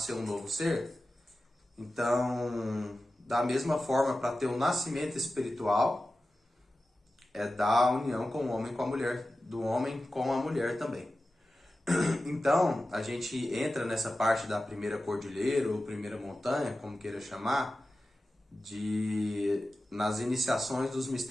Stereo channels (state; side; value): normal; both; correlation 0.94